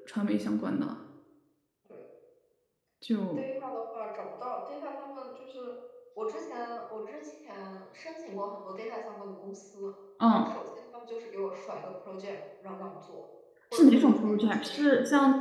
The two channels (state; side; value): identical; both; correlation 1.00